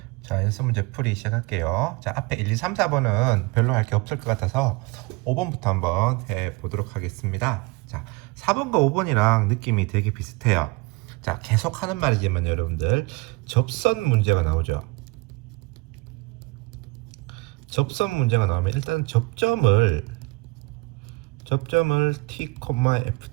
자, 연습 문제 풀이 시작할게요. 자, 앞에 1, 2, 3, 4번은 별로 할 게 없을 것 같아서 5번부터 한번 해보도록 하겠습니다. 자, 4번과 5번이랑 느낌이 되게 비슷해요. 자, 계속 하는 말이지만 여러분들 접선 문제가 나오죠. 접선 문제가 나오면 일단 접점을 t,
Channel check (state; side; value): quieter; left; 25.0 dB